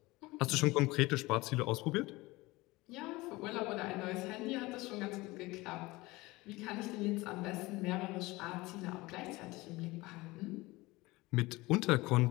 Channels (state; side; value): quieter; right; 21.1 dB